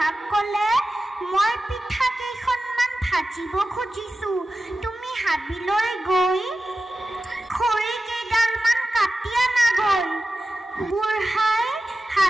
ক'লে মই পিঠা কেইখনমান ভাজিব খুজিছোঁ তুমি হাবিলৈ গৈ খৰি কেইডালমান কাটি আনাগৈ বুঢ়াই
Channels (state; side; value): normal; both; correlation 0.94